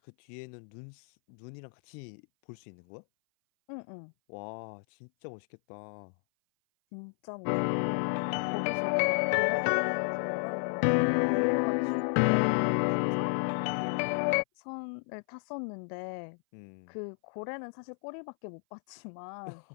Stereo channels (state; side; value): silent; right; 56 dB below the other